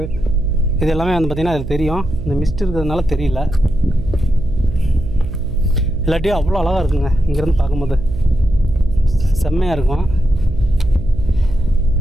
இது எல்லாமே வந்து பார்த்திங்கன்னா அதில் தெரியும். இந்த மிஸ்ட் இருக்கிறதுனால தெரியல. இல்லாட்டியும் அவ்வளோ அழகாக இருக்குங்க. இங்கேருந்து பார்க்கும்போது செம்மையாக இருக்கும்.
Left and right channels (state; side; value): noise; right; hum, 8 dB below the sound